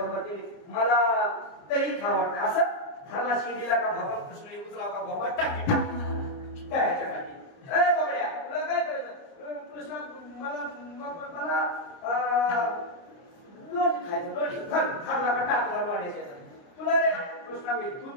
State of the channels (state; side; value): late; right; 30 ms